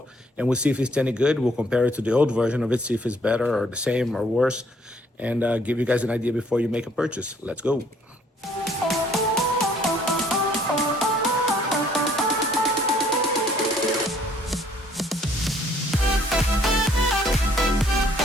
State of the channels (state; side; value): normal; both; correlation 0.63